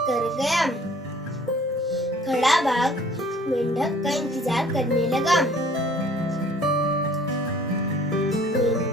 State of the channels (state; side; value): normal; both; correlation 0.54